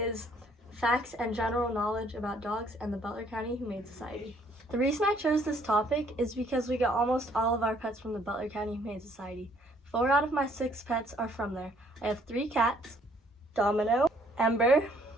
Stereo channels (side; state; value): both; normal; correlation 0.63